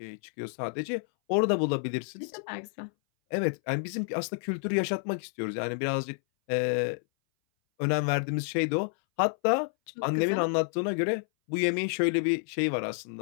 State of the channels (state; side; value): silent; right; 58 dB below the other